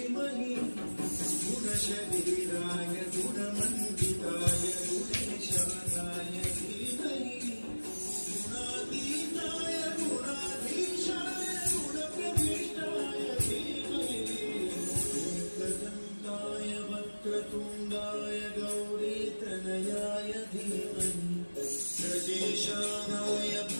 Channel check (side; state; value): both; inverted; correlation -1.00